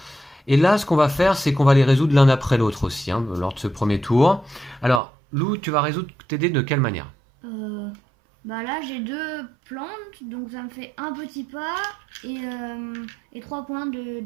Et là, ce qu'on va faire, c'est qu'on va les résoudre l'un après l'autre aussi, hein, lors de ce premier tour. Alors, Lou, tu vas résoudre tes dés de quelle manière? Bah là j'ai deux plantes, donc ça me fait un petit pas et 3 points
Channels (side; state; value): left; drops out; at 5.0 s